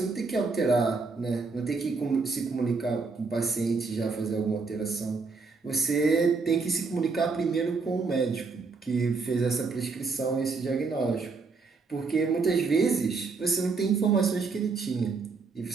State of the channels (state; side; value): quieter; left; 4.4 dB